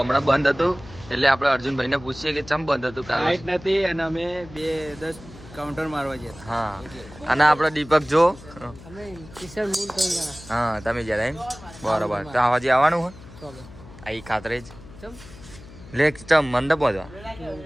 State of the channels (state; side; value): noise; left; hum, 18 dB below the sound